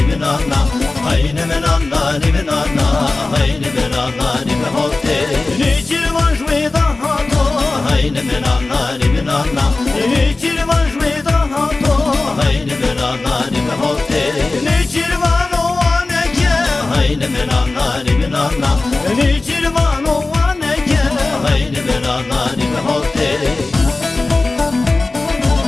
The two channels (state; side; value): quieter; right; 3.3 dB